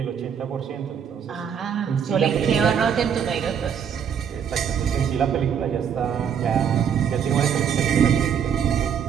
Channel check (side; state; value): left; quieter; 7.8 dB